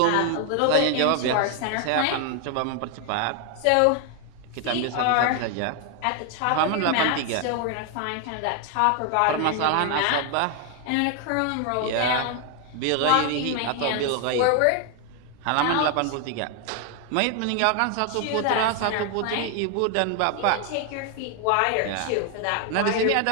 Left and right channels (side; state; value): both; different; correlation 0.01